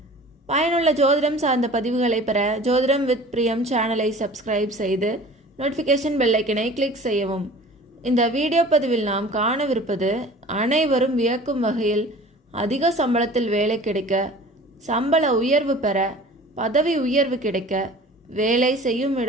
பயனுள்ள ஜோதிடம் சார்ந்த பதிவுகளை பெற ஜோதிடம் வித் பிரியம் சேனலை சப்ஸ்கிரைப் செய்து நோட்டிஃபிகேஷன் பெல்லைக்கனை கிளிக் செய்யவும். இந்த வீடியோ பதிவில் நாம் காணவிருப்பது, அனைவரும் வியக்கும் வகையில் அதிக சம்பளத்தில் வேலை கிடைக்க, சம்பள உயர்வு பெற, பதவி உயர்வு கிடைக்க, வேலை செய்யும்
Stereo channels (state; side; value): normal; both; correlation 0.43